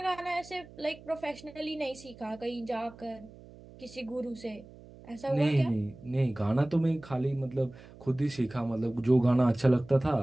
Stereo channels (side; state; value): right; noise; hum, 20 dB below the sound